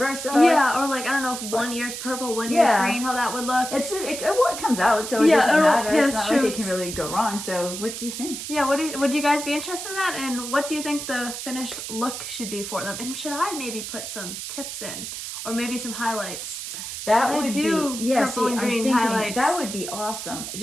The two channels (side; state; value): right; noise; hiss, 7 dB below the sound